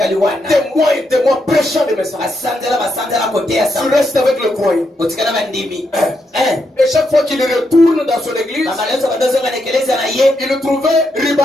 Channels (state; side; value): normal; both; correlation 0.81